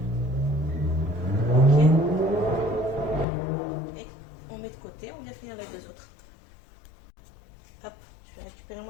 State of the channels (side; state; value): right; drops out; at 3.2 s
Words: Ok. Et on met de côté, on vient finir les deux autres. Hop, je vais récupérer